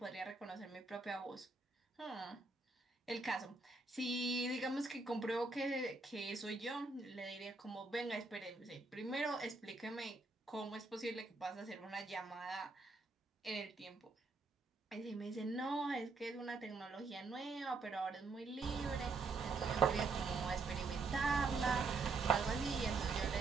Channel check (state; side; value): quieter; left; 3.8 dB